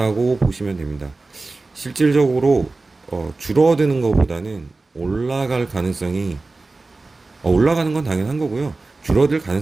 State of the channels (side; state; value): left; quieter; 3.5 dB